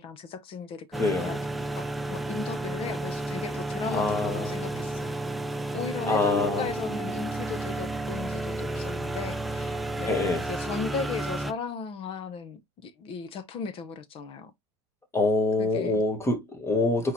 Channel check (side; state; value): both; normal; correlation 0.61